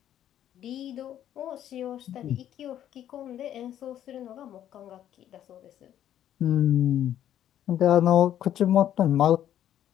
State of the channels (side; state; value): right; quieter; 11.1 dB